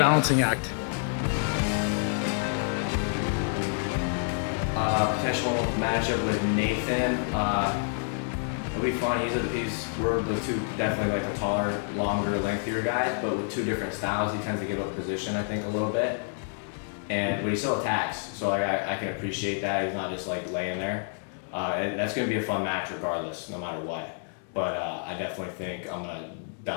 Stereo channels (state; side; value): silent; right; 59 dB below the other